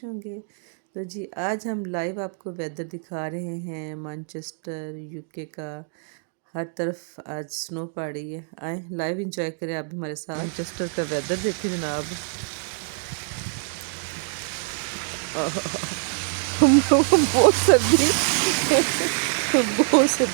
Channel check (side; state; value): left; silent; 60 dB below the other